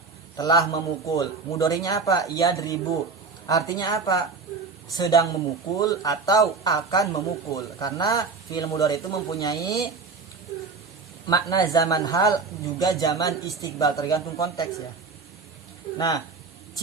telah memukul. Mudharinya apa? Yadribu. Artinya apa? Sedang memukul atau akan memukul. Karena fi'il mudhari itu mempunyai makna zaman hal juga zaman istiqbal, tergantung konteks ya. Nah,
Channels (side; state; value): left; quieter; 4.5 dB